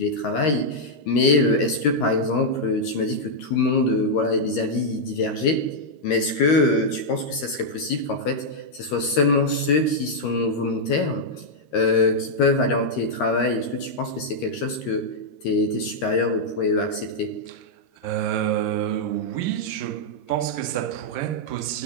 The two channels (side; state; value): right; late; 13 ms